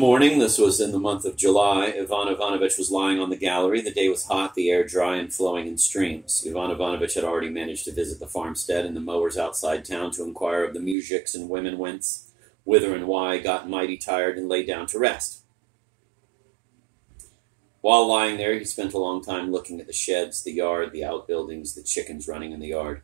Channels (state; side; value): drops out; left; at 11.0 s